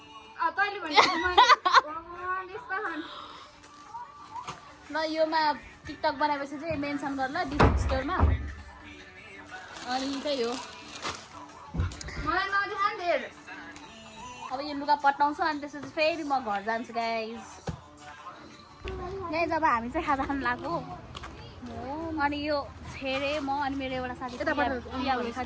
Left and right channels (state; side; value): identical; both; correlation 1.00